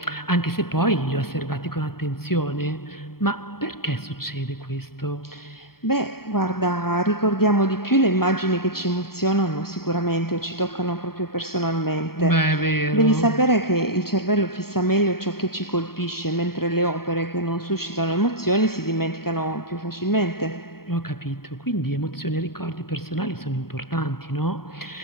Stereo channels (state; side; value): late; right; 0.94 ms